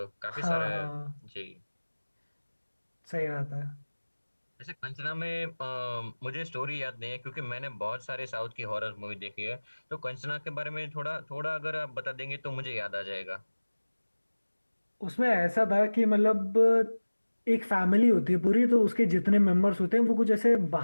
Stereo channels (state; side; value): inverted; both; correlation -1.00